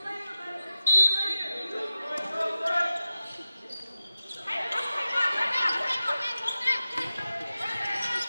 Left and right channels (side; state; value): both; inverted; correlation -0.93